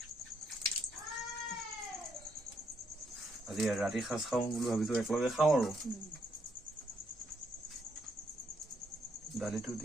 আজি ৰাতি সাজ খাওঁ বুলি ভাবিছো একেলগে খাওঁ আৰু দালিটো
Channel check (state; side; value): normal; both; correlation 0.74